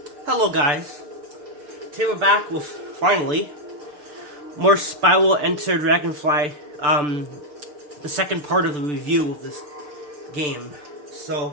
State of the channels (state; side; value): late; left; 6.8 ms